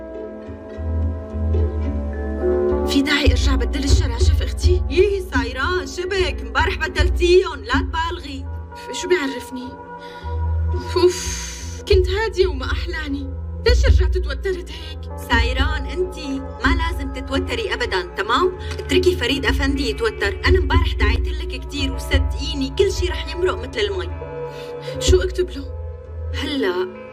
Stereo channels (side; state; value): both; identical; correlation 1.00